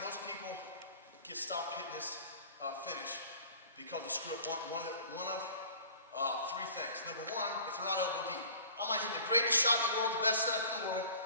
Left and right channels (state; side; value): inverted; both; correlation -0.46